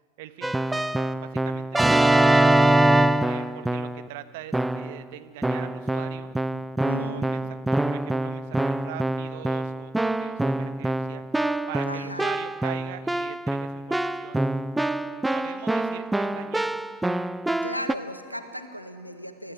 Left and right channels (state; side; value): normal; both; correlation 0.92